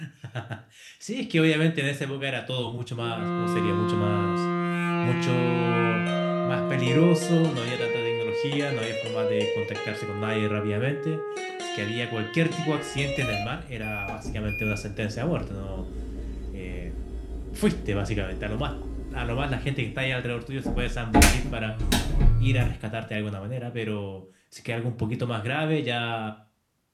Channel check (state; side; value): identical; both; correlation 1.00